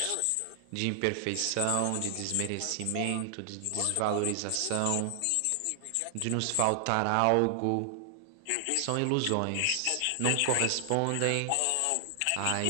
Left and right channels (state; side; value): different; both; correlation 0.00